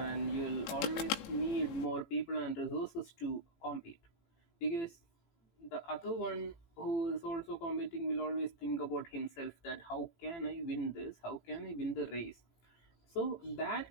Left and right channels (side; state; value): right; late; 18 ms